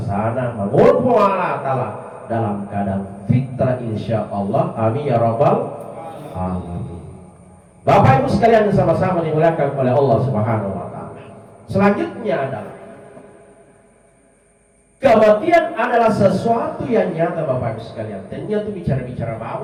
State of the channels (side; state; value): both; identical; correlation 1.00